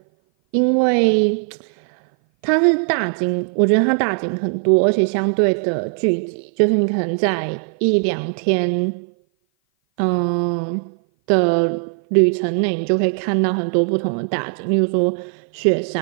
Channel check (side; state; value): left; silent; 57 dB below the other